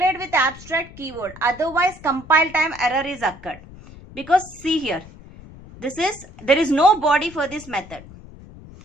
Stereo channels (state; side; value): noise; left; rumble, 19 dB below the sound